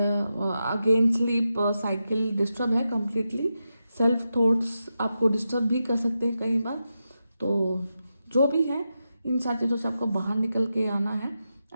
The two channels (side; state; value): both; inverted; correlation -0.89